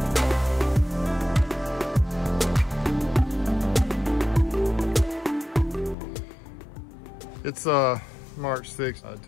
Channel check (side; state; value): right; drops out; at 6.0 s